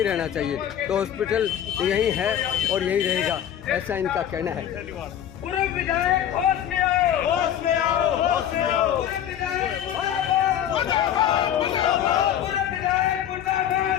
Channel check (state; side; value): quieter; right; 10.3 dB